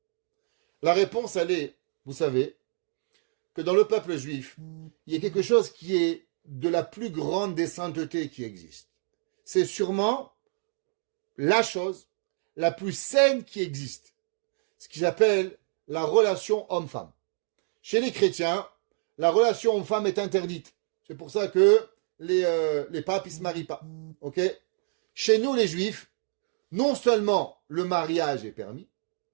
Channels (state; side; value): silent; left; digital silence